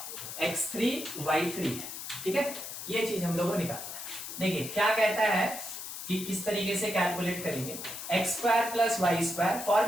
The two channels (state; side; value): noise; left; hiss, 8 dB below the sound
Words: x3 y3 है। ठीक है, ये चीज हम लोगों को निकालना है। देखिए क्या कहता है कि किस तरीके से कैलकुलेट करेंगे, x square plus y square,